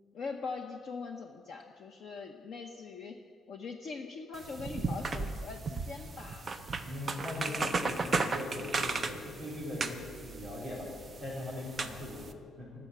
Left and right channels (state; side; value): normal; both; correlation 0.78